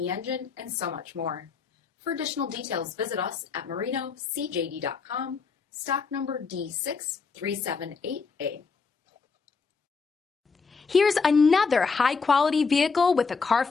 engine, and so much more. For additional details, visit us at marinocjd.com, stock number D6378A. Here's another high-quality vehicle with a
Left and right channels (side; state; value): right; quieter; 5.0 dB